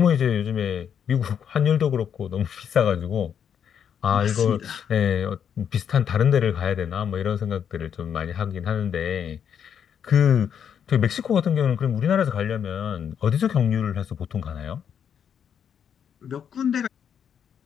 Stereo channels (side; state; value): right; quieter; 8.1 dB